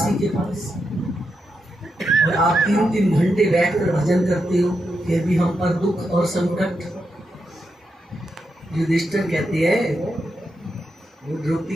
के पास। और आप 3-3 घंटे बैठकर भजन करते हो, फिर भी हम पर दुख और संकट। युधिष्ठिर कहते हैं, वो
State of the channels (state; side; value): normal; both; correlation 0.85